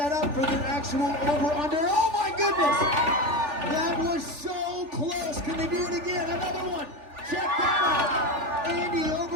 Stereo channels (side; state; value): left; late; 3.4 ms